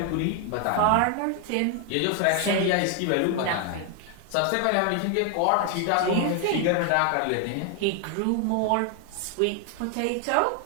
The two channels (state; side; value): different; both; correlation 0.01